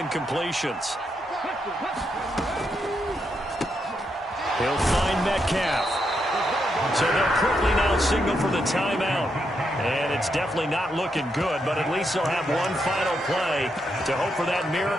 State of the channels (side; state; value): both; normal; correlation 0.81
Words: He'll find Metcalf. So they'll quickly now signal for the timeout. And it's definitely not looking good, but at least they'll have one final play to hope for that